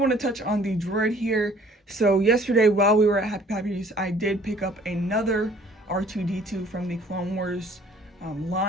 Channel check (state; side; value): normal; both; correlation 0.55